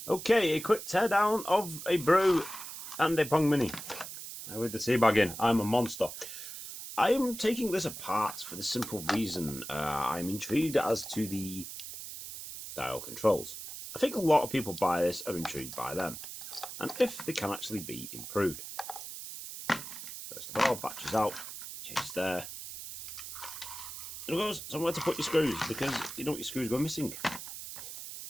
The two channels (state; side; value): noise; right; hiss, 10 dB below the sound